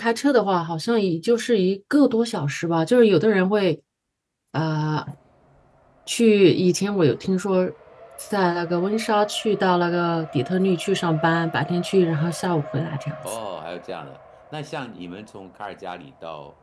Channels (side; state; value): both; identical; correlation 1.00